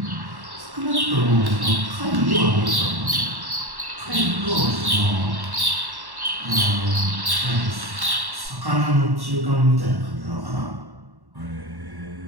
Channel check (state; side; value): late; left; 1.1 ms